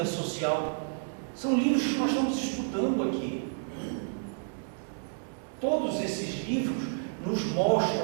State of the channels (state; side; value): silent; left; digital silence